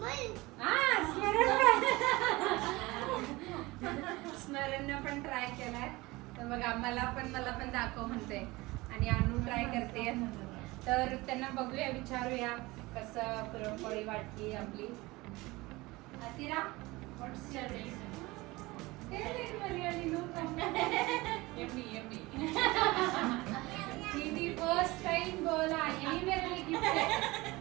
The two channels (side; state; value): left; quieter; 21.5 dB